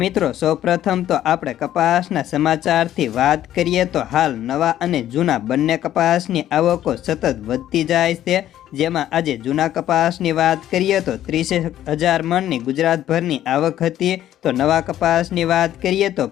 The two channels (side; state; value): right; quieter; 12.2 dB